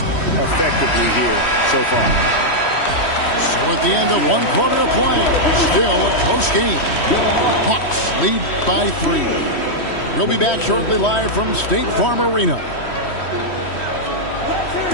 effectively here so far. So at the end of 1 quarter of play, still a close game. Hawks lead by 3. We'll be back shortly live from State Farm Arena.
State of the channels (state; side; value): late; right; 3.1 ms